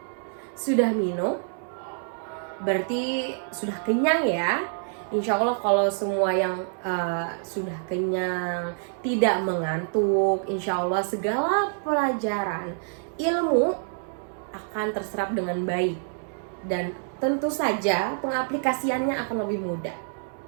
Sudah minum? Berarti sudah kenyang ya. Insya Allah kalau semua yang sudah kenyang, tidak mengantuk, insya Allah segala pelajaran ilmu akan terserap dengan baik. Dan tentu saja pengaplikasiannya akan lebih mudah.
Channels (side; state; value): left; silent; 60 dB below the other